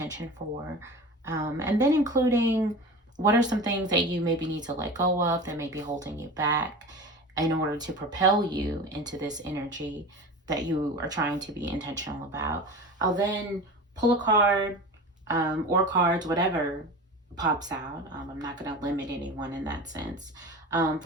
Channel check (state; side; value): normal; both; correlation 0.33